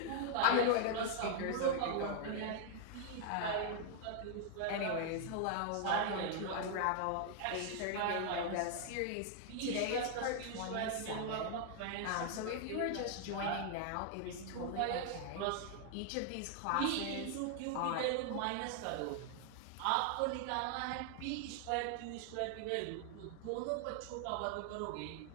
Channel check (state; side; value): different; both; correlation 0.00